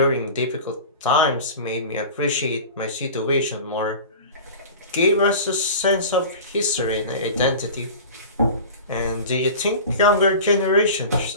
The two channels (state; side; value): inverted; both; correlation -0.36